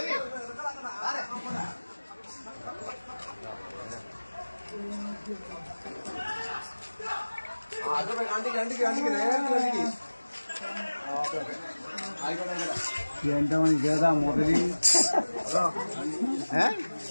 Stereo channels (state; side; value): inverted; both; correlation -1.00